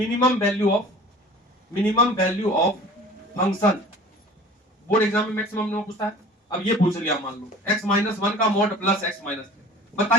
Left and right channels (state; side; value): normal; both; correlation 0.44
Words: value of function, board exam में मैक्सिमम में पूछता है। अब ये पूछ लिया, मान लो x माइनस 1 का मॉड प्लस x माइनस 3,